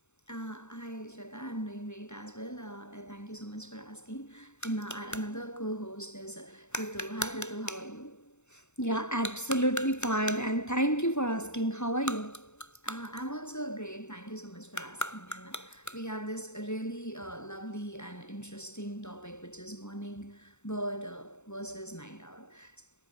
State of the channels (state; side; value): late; right; 0.82 ms